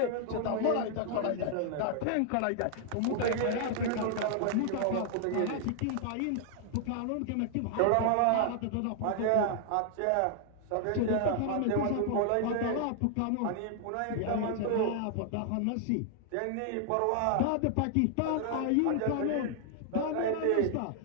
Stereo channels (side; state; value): both; different; correlation 0.00